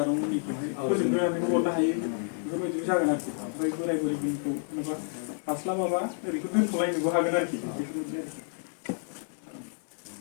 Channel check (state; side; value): silent; right; 58 dB below the other